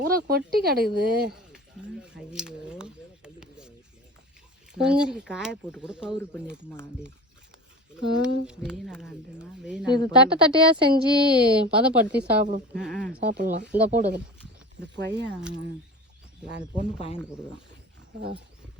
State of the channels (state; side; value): normal; both; correlation 0.34